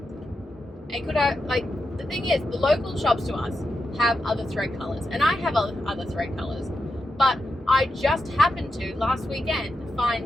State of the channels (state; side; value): normal; both; correlation 0.88